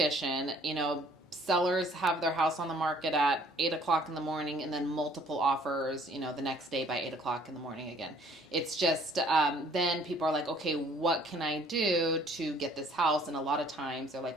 sellers have their house on the market at 8 o'clock in the morning and then multiple offers, the next day by 8 o'clock in the morning again. It's just, then people are like, okay, what can I do to get this house? And a lot of times they're like,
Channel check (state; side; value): normal; both; correlation 0.58